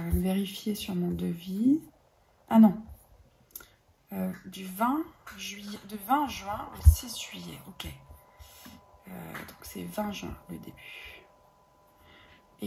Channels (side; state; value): both; identical; correlation 1.00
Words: même vérifier sur mon devis. Ah non. Du 20 juin au 6 juillet. Ok. Donc, c'est 20 juin le début.